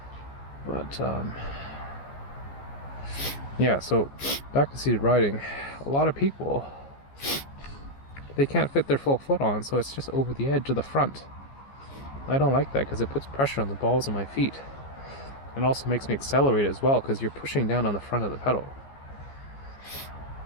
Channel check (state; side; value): late; right; 15 ms